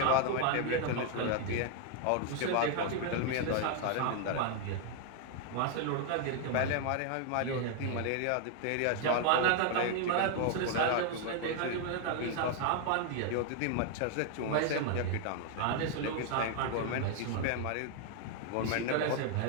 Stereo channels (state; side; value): different; both; correlation 0.00